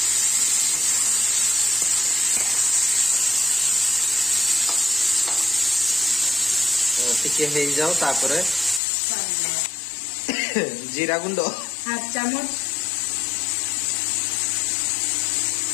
टिके हे जाओ तापरे जीरा गुंड हाफ चम्मच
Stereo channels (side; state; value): right; drops out; at 8.8 s